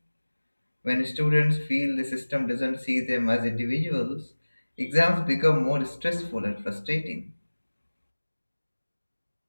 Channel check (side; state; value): both; inverted; correlation -1.00